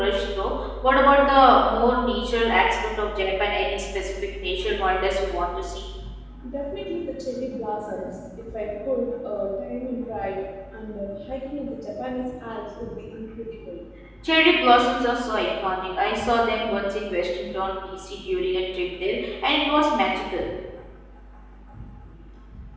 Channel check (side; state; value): both; identical; correlation 1.00